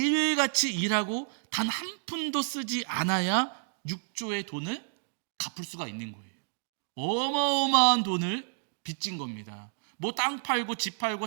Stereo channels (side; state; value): left; silent; digital silence